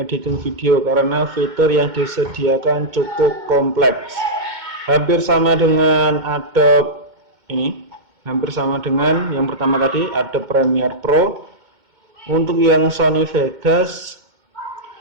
video karena fitur yang disediakan cukup kompleks. Hampir sama dengan Adobe ini. Hampir sama dengan yang pertama tadi, Adobe Premiere Pro. Untuk yang Sony Vegas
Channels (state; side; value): late; left; 2.2 ms